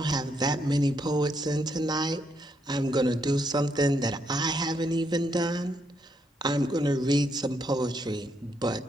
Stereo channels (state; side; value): normal; both; correlation 0.77